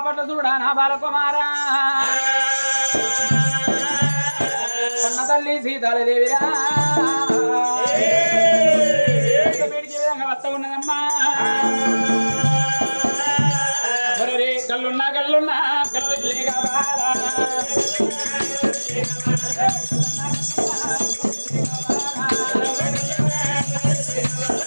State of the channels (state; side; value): inverted; both; correlation -1.00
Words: చూడ నా బాలకుమారా కన్న తల్లి సీతాదేవిరా బయటికి విధంగా వస్త ఉన్నదమ్మా కళ్ళున్నా కళ్ళున్నా కళ్ళు లేక బారా